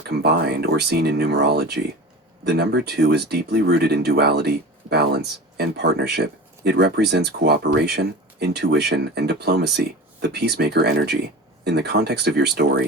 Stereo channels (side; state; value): both; normal; correlation 0.33